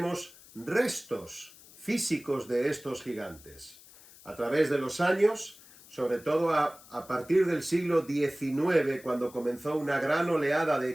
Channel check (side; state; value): left; noise; hiss, 22 dB below the sound